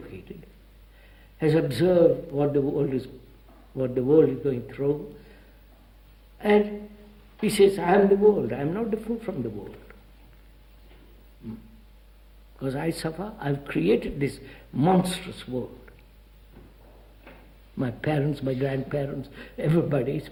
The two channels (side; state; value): both; identical; correlation 1.00